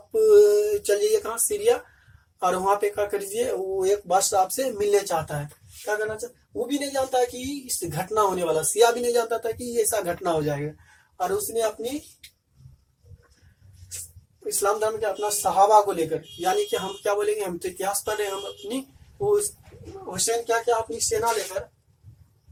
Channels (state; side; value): identical; both; correlation 1.00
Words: चल जाइए कहाँ? सीरिया, और वहां पे क्या करिए, वो एक बादशाह आपसे मिलने चाहता है। क्या करना चाहता? वो भी नहीं जानता है कि इस घटना होने वाला, सिया भी नहीं जानता था कि ऐसा घटना हो जाएगा। और उसने अपनी इस्लाम धर्म के अपना सहाबा को लेकर, यानी कि हम क्या बोलेंगे, हम तो इतिहास पढ़ रहे हैं, हम अपनी वो हुसैन क्या क्या अपनी सेना लेकर,